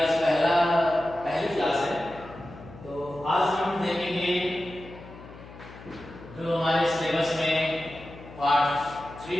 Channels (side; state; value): left; noise; hum, 17 dB below the sound